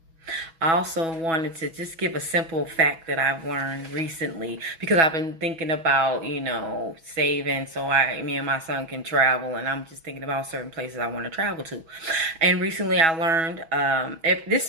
also wanted to just give a simple fact that I've learned recently, because I've been thinking about, you know, saving so me and my son can travel, and I'm just thinking about certain places I want to travel to. And recently I learned, if this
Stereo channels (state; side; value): late; left; 6.1 ms